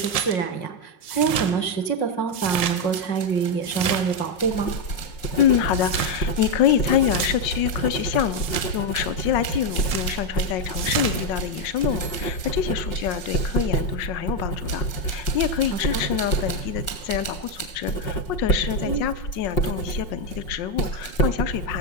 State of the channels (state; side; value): late; right; 5.5 ms